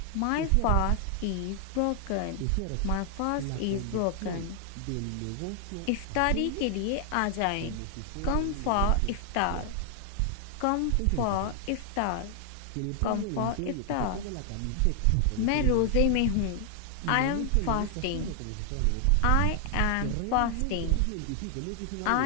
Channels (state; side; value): different; both; correlation 0.00